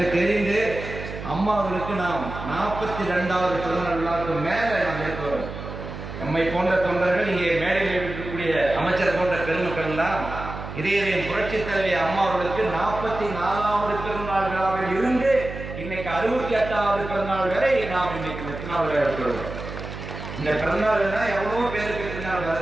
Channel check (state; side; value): noise; right; hum, 9 dB below the sound